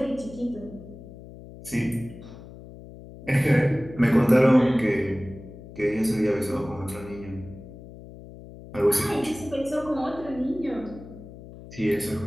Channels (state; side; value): noise; left; hum, 16 dB below the sound